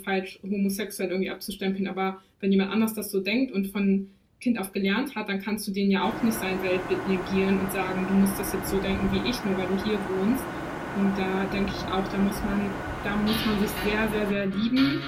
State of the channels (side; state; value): both; identical; correlation 1.00